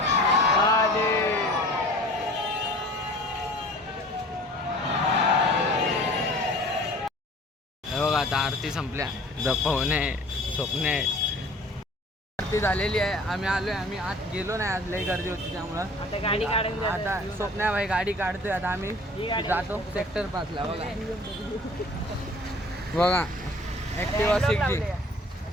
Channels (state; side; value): normal; both; correlation 0.48